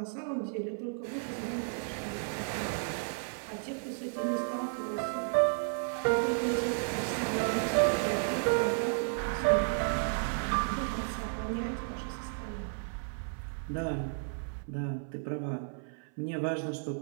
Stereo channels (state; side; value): silent; left; 56 dB below the other